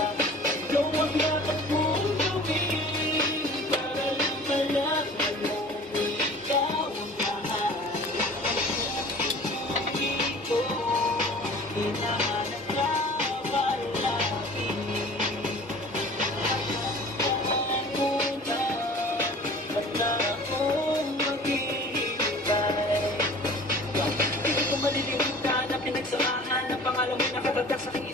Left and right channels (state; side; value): normal; both; correlation 0.45